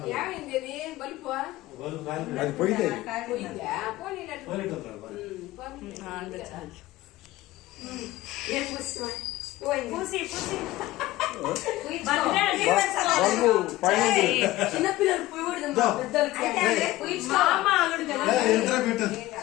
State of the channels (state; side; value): quieter; right; 17.2 dB